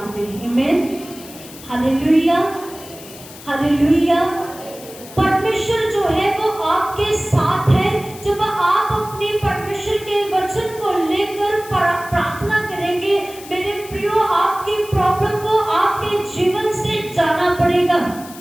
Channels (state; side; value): noise; left; hiss, 17 dB below the sound